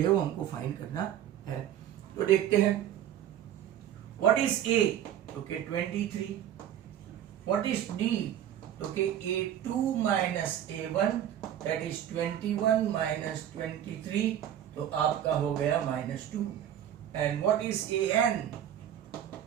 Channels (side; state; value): left; quieter; 10.8 dB